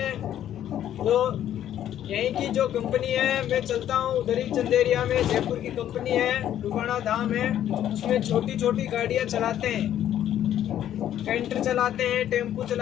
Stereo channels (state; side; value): quieter; right; 11.2 dB